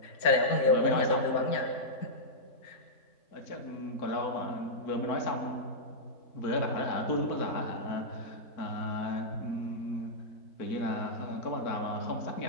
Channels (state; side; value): late; right; 4.5 ms